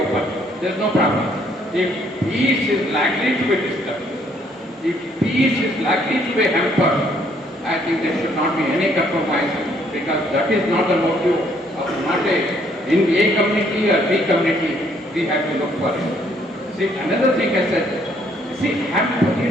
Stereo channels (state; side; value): normal; both; correlation 0.67